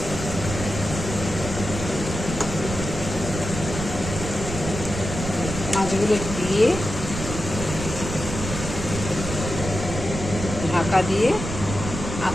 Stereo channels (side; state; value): right; noise; rumble, 6 dB below the sound